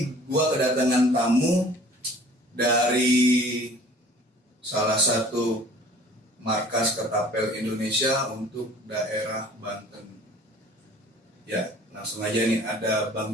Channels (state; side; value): normal; both; correlation 0.50